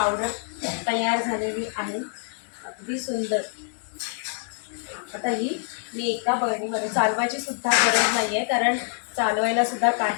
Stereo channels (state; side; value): silent; right; 61 dB below the other